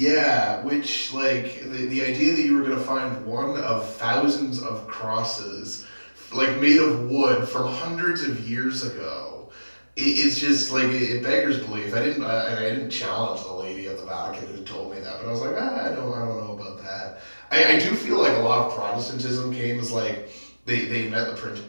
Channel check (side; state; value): both; inverted; correlation -1.00